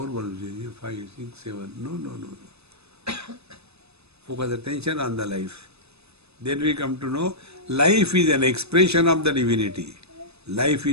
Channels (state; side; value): late; left; 0.79 ms